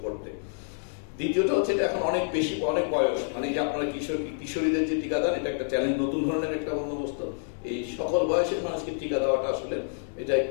করতে। দ্বিতীয়টা হচ্ছে এটা এখন অনেক বেশি, অনেক বয়স, মানে যে আপনারা কিশোরীদের যে টিকাদান, এটা একটা চ্যালেঞ্জ, নতুন ধরনের একটা বন্দোবস্ত। এই সকল বয়সের মানুষকে টিকা দেওয়াটা আসলে এটা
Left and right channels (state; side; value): silent; right; 59 dB below the other